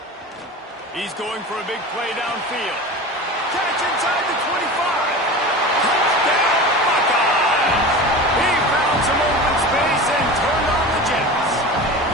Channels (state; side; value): normal; both; correlation 0.32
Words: He's going for a big play downfield. Catch inside the 25. Some open space and turned on the Jets.